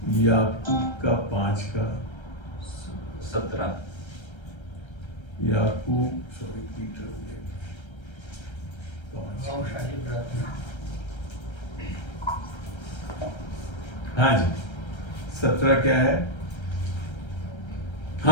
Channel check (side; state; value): right; late; 1.3 ms